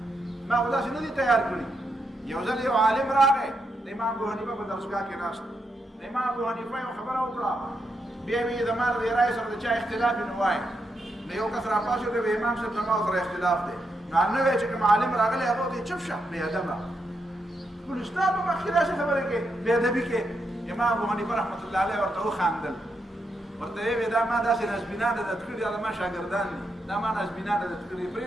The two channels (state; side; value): normal; both; correlation 0.82